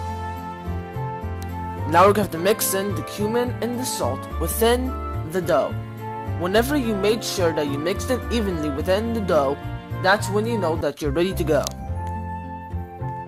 Now we have to mix in the cumin and the salt within the dough. Whenever you made sure that you mixed it evenly within the dough, that's when you know that you're ready to go.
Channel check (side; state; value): both; identical; correlation 1.00